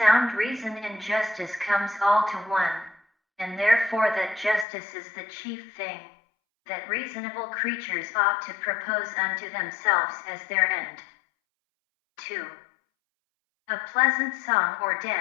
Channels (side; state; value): right; drops out; at 4.7 s